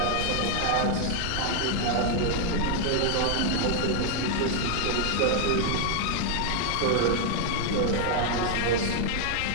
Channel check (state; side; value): different; both; correlation 0.00